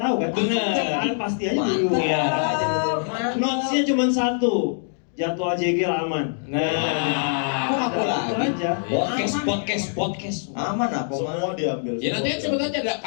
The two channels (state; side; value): silent; right; digital silence